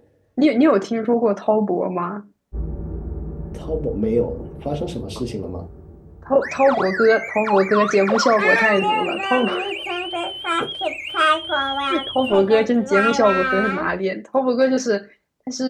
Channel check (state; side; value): identical; both; correlation 1.00